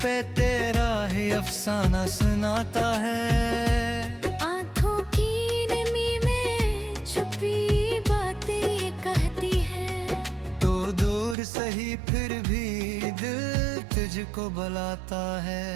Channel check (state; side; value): drops out; left; at 11.4 s